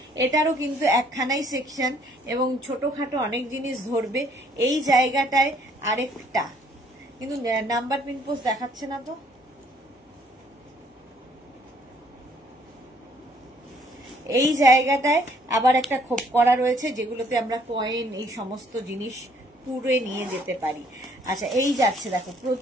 এটারও কিন্তু একখানাই সেকশন এবং ছোটখাটো অনেক জিনিস ধরবে। এই জায়গাটায় আরেকটা কিন্তু নাম্বার পিন পোস্ট দেখাচ্ছে না তো, এই জায়গাটায় আবার একটা খোপ করা রয়েছে, যেগুলোতে আমরা কয়েন এই সমস্ত জিনিস পুরে নিয়ে যেতে পারি। আচ্ছা, এই যাচ্ছে দেখো,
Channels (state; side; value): normal; both; correlation 0.63